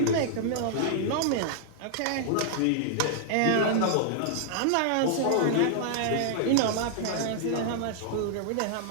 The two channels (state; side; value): different; both; correlation -0.01